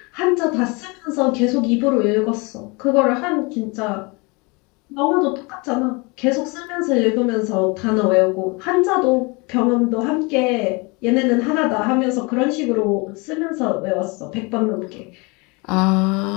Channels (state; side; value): quieter; right; 28.3 dB